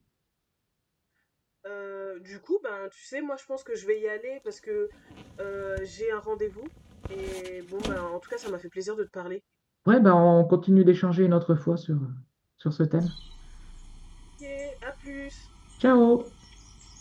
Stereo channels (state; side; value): identical; both; correlation 1.00